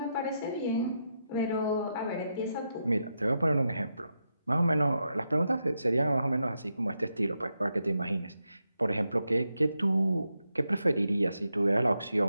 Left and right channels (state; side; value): inverted; both; correlation -0.85